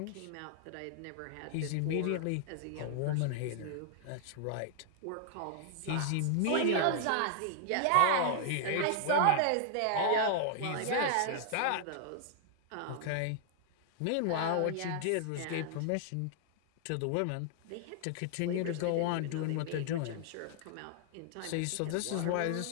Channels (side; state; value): both; different; correlation 0.00